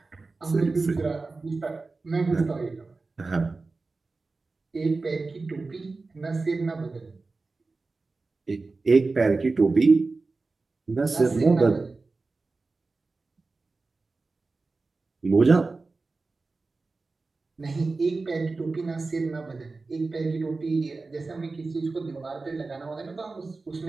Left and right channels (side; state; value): left; quieter; 3.7 dB